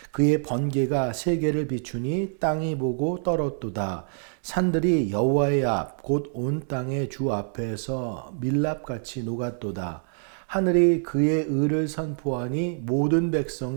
그의 번개가 세계를 비추니 땅이 보고 떨었도다. 산들이 여호와의 앞 곧 온 땅의 주 앞에서 밀랍같이 녹았도다. 하늘이 그의 의를 선포하니 모든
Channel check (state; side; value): silent; left; digital silence